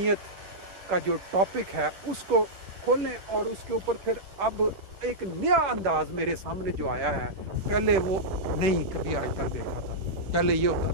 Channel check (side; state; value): left; late; 10 ms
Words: کا جو ٹاپک ہے اس کو کھولیں، اور اس کے اوپر پھر اب ایک نیا انداز میرے سامنے جو آیا ہے، پہلے وہ نہیں کبھی آج تک دیکھا تھا۔ پہلے یہ ہوتا